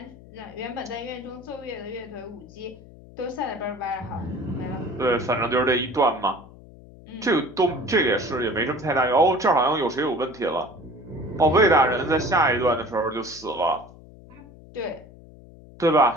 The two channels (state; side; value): noise; left; hum, 20 dB below the sound